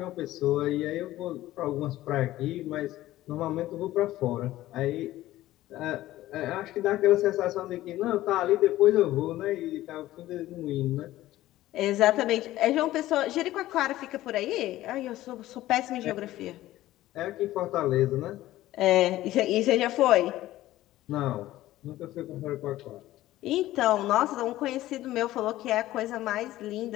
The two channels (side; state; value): right; quieter; 15.4 dB